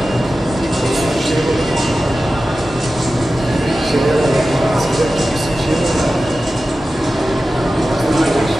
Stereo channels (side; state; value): both; normal; correlation 0.94